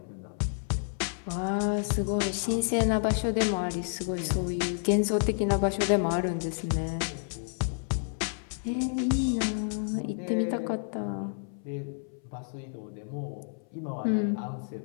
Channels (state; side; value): silent; right; 58 dB below the other